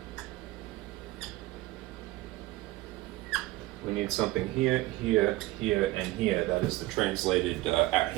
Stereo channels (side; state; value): left; quieter; 18.1 dB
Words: we need something here, here, here, and here. That is the translated